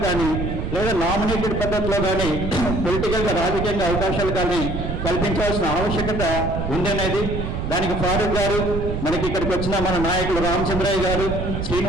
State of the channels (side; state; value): right; noise; rumble, 4 dB below the sound